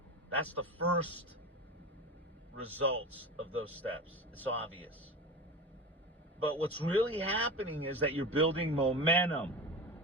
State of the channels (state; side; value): normal; both; correlation 0.28